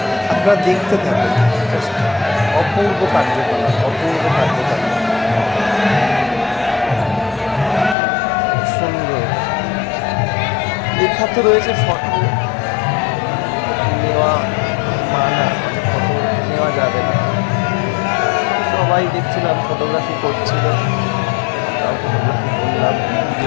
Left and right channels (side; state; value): right; drops out; at 8.0 s